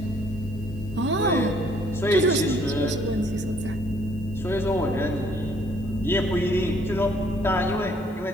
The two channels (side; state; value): left; noise; hiss, 30 dB below the sound